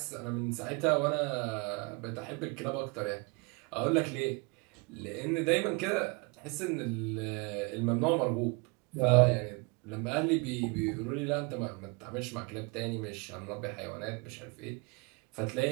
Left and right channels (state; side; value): quieter; left; 29.8 dB